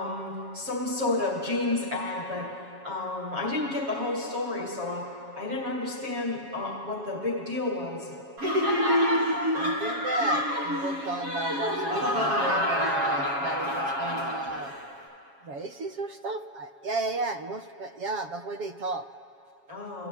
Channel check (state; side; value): late; left; 7.3 ms